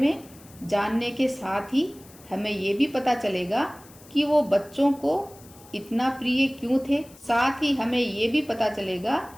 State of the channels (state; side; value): noise; left; hiss, 23 dB below the sound